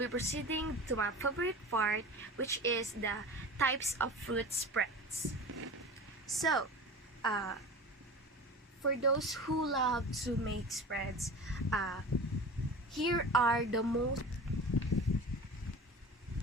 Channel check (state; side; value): normal; both; correlation 0.35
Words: proceeding to my favorite part, which is the types of fruit spreads. So, for those who love to make spreads, here are the most